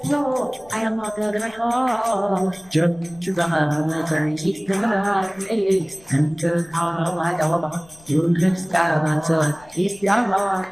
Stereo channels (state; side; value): noise; left; rumble, 26 dB below the sound